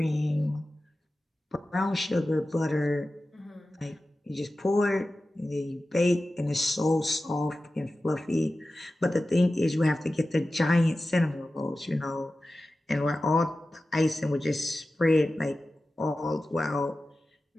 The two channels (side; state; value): both; normal; correlation 0.94